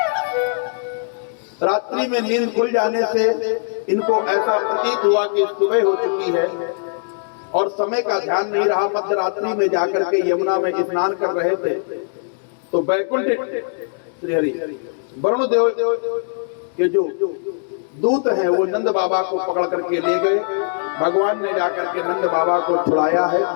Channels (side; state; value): right; silent; 60 dB below the other